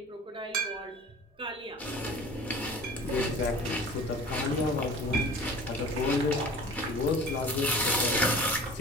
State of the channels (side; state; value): both; normal; correlation 0.43